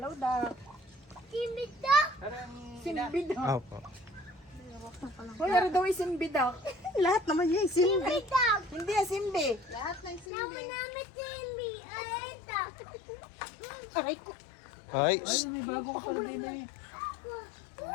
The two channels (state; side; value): drops out; right; at 10.2 s